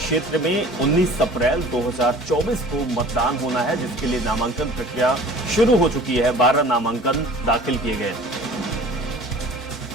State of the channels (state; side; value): normal; both; correlation 0.46